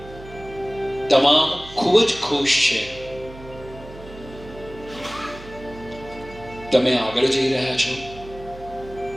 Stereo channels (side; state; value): right; noise; hum, 17 dB below the sound